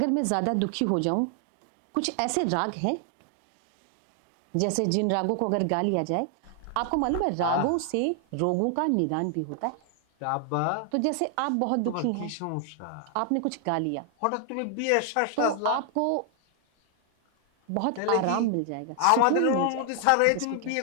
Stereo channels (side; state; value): both; different; correlation 0.00